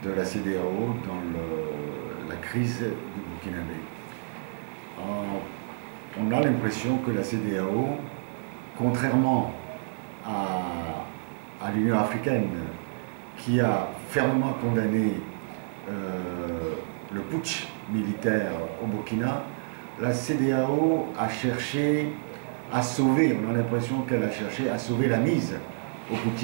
de la CEDEAO dans la crise du Burkinabé. On a l'impression que la CEDEAO, contrairement à l'Union africaine, qui a fermement condamné le putsch militaire au Burkina, la CEDEAO a cherché à sauver, on a l'impression qu'elle a cherché à sauver la mise aux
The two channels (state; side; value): silent; left; digital silence